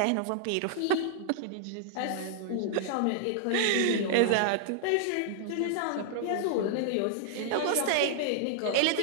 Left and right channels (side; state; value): both; different; correlation -0.01